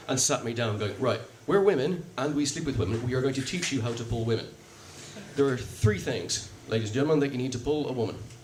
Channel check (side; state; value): both; identical; correlation 1.00